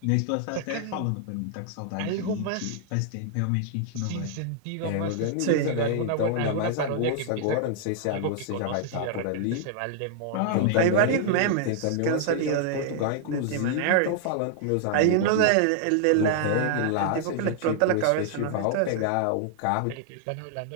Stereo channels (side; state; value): both; different; correlation -0.01